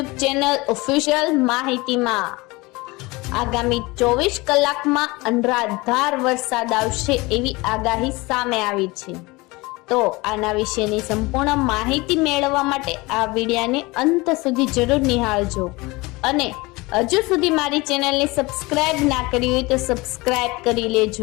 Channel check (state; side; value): quieter; right; 23.2 dB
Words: ચેનલ ઓફિશિયલ માહિતીમાં। આગામી 24 કલાકમાં અનરાધાર વરસાદ આવશે એવી આગાહી સામે આવી છે। તો આના વિશેની સંપૂર્ણ માહિતી મેળવવા માટે આ વિડિયોને અંત સુધી જરૂર નિહાળજો અને હજુ સુધી મારી ચેનલને સબસ્ક્રાઇબ ના કરી હોય તો સબસ્ક્રાઇબ કરી